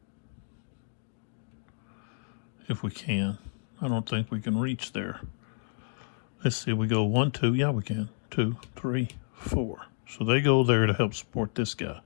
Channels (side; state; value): right; silent; digital silence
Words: if we can, I don't think we can reach there. Let's see, we go 1, 2, yeah, we can. 2, 3, 4. So they go there to help support this guy.